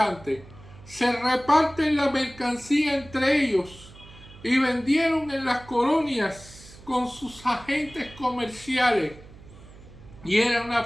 se reparten la mercancía entre ellos y vendieron en las colonias con sus agentes comerciales. Y era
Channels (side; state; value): right; noise; hum, 20 dB below the sound